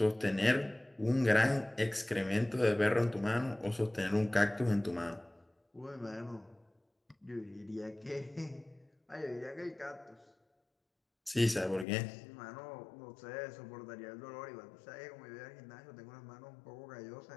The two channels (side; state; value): right; drops out; at 11.9 s